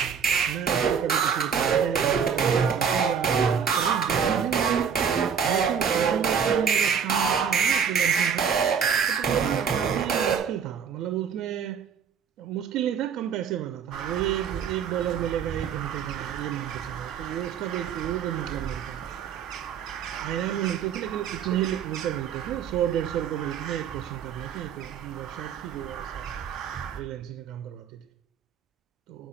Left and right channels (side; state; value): left; quieter; 7.3 dB